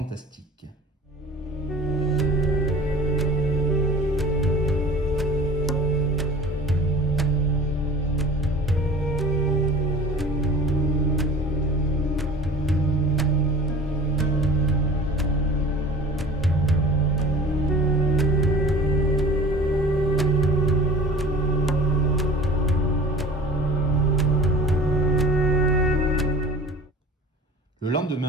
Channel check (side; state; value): both; normal; correlation 0.42